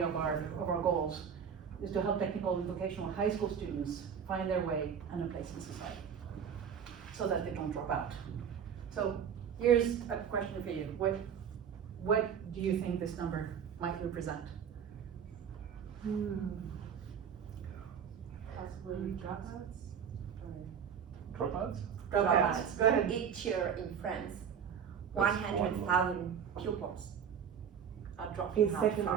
of our goals, is to help technical and vocational high school students find their way and a place in society, so that they don't drop out. So here's a question for you. What do you think this number might represent? Possibly dropouts? Dropouts? Dropouts. Go ahead. Each year in France, That's 100,000 pupils are dropping In out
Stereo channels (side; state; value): left; quieter; 7.7 dB